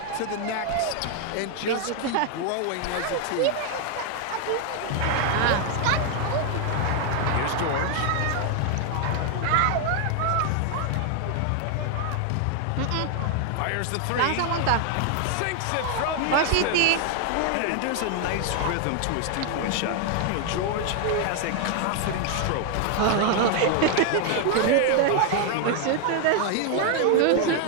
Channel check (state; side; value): different; both; correlation 0.00